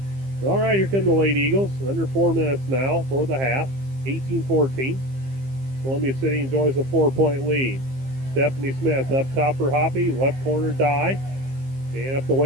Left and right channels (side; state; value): left; late; 15 ms